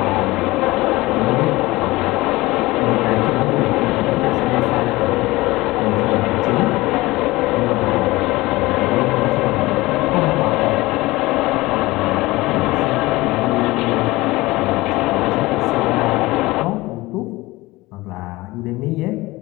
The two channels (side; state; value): right; quieter; 20.3 dB